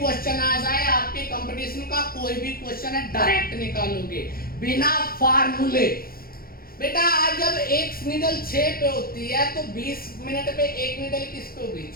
आ जाए, आपके कंपटीशन का कोई भी क्वेश्चन है, डायरेक्ट निकालोगे बिना फार्मूले। बेटा आज जब एक नीडल 6 पे होती है तो 20 मिनट पे एक नीडल किस पे होगी?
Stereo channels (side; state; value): right; late; 0.43 ms